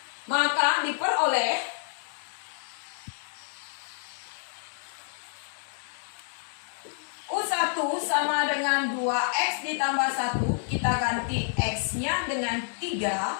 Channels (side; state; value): right; silent; 59 dB below the other